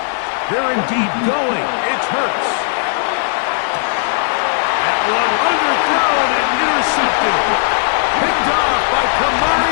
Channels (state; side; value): silent; right; digital silence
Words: They're indeed going. It's Hurts. That one underthrown and intercepted. Picked off by Kamari